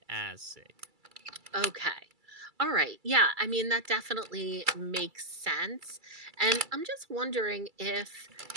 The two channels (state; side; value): late; left; 2.3 ms